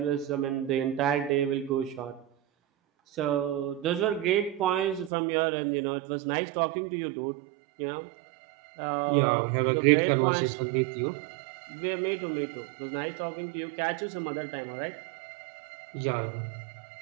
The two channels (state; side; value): drops out; left; at 5.1 s